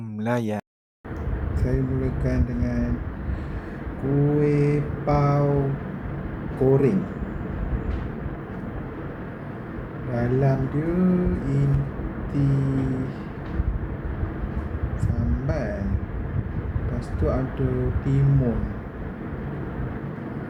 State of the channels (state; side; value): identical; both; correlation 1.00